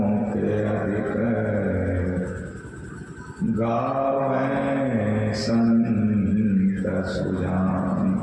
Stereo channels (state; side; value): identical; both; correlation 1.00